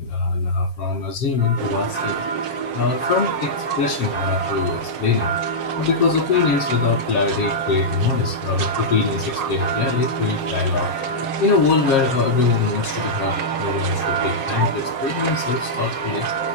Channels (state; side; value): late; right; 7.4 ms